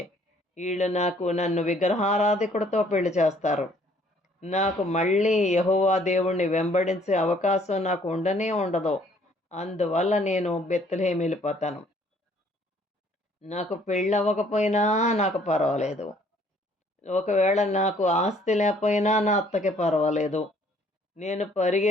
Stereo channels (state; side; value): normal; both; correlation 0.61